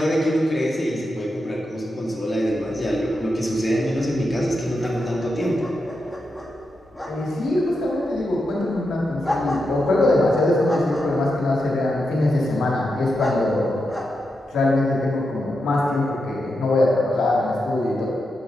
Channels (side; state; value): both; normal; correlation 0.86